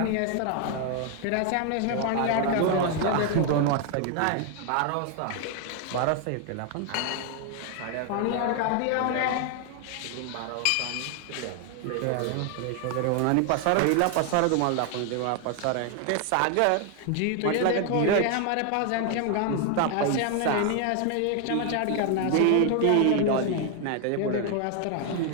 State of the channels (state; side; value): different; both; correlation 0.00